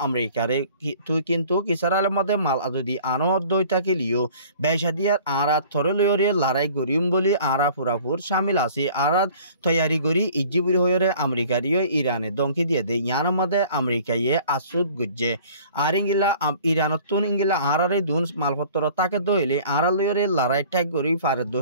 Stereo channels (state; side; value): inverted; both; correlation -0.50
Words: আমেরিকারে তুই কিন্তু ইসরায়েলের মধ্যে মাল যদি আনো দইতাকিলিও বেশা দিয়ার আরা থরে লয়রে লড়াই করিম বলি আরা পুরাপুর শামিল আছে আরা তৈয়ারি করি ইজিবুর হইরে আমেরিকারিও ইরানে দমকি দিয়ে দে ইয়ার মধ্যে আমেরিকায়ে আসুদ গুজ্জে আর ইঙ্গিলা ইরানতুন ইঙ্গিলা আরারে দুন মালপত্র তাকে দইলে আরা লয়রে লড়াই ঠাক করি ফারে